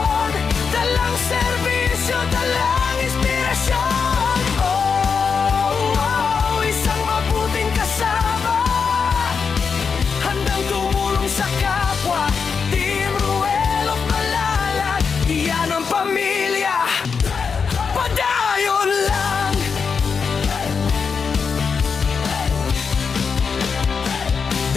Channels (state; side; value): quieter; right; 5.7 dB